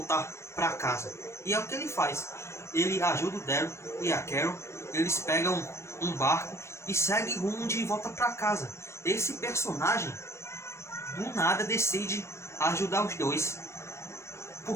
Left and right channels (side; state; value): right; late; 0.13 ms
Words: para casa. E é o que ele faz. Ele ajuda o Daryl e a Carol. Eles pegam um barco e seguem rumo de volta para casa. Esse personagem do nada decide ajudar os dois.